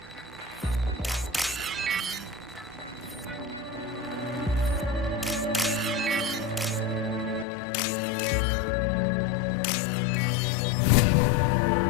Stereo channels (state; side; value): drops out; right; at 7.5 s